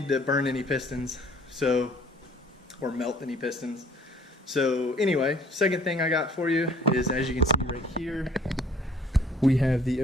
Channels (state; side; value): normal; both; correlation 0.55